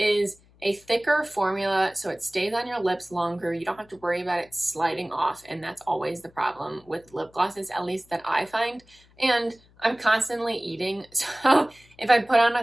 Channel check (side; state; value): left; noise; hum, 29 dB below the sound